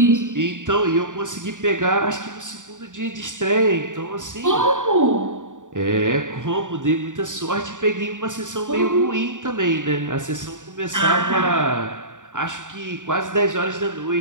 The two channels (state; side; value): late; left; 0.87 ms